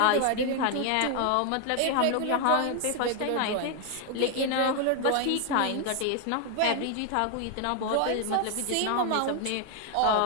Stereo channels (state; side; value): different; both; correlation 0.01